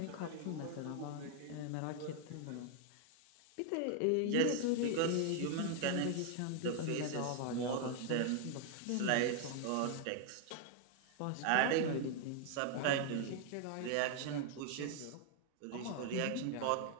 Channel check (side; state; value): both; different; correlation 0.00